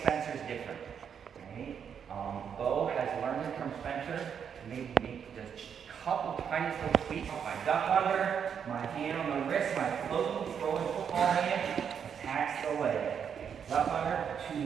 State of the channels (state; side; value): quieter; left; 7.6 dB